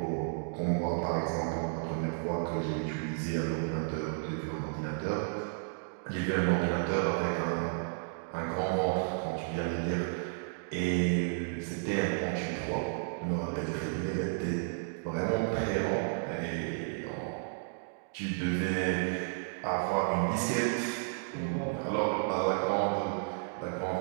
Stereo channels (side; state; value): left; silent; digital silence